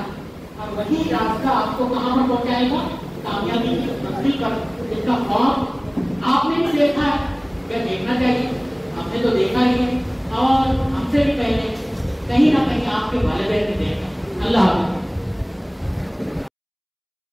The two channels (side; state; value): both; identical; correlation 1.00